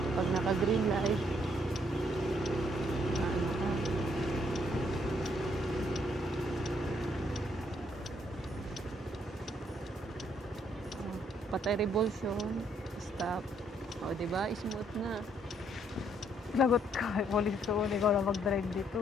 pag naka-green light. Ano ka? Oh, patay revolution, stop. O, diba? Smooth na. Lagot ka. Police ko. Ikaw na mag-drive dito.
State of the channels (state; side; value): normal; both; correlation 0.70